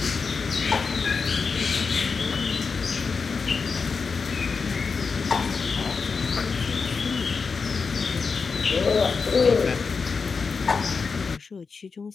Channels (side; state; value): right; quieter; 5.0 dB